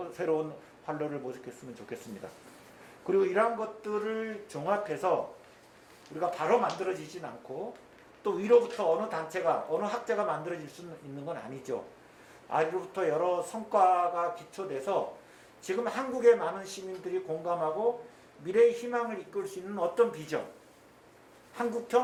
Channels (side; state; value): both; identical; correlation 1.00